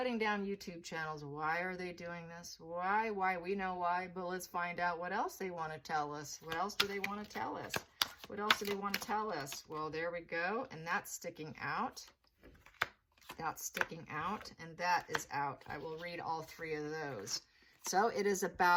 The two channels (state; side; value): identical; both; correlation 1.00